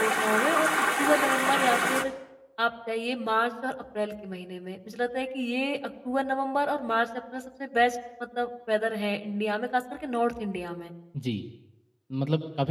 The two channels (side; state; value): both; identical; correlation 1.00